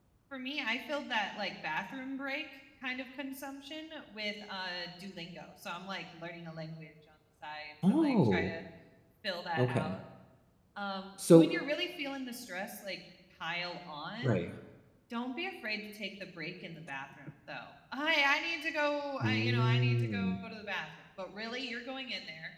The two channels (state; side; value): identical; both; correlation 1.00